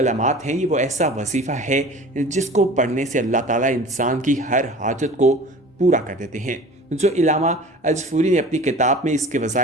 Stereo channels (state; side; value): normal; both; correlation 0.41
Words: हैं, ये वो ऐसा वजीफ़ा है जिसको पढ़ने से अल्लाह ताला इंसान की हर हाजत को पूरा कर देते हैं। जो इलामा अजफूरी ने अपनी किताब में इसके